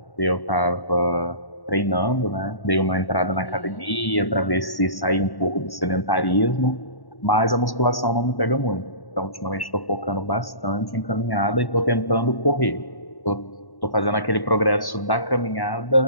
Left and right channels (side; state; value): right; late; 1.1 ms